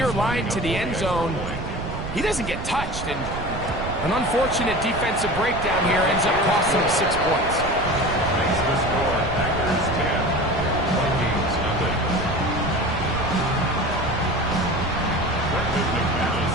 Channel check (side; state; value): right; noise; rumble, 7 dB below the sound